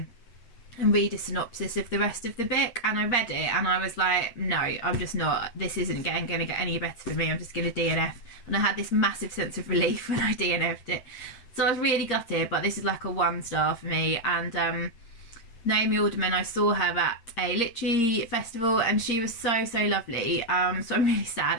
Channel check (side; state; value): right; late; 8.6 ms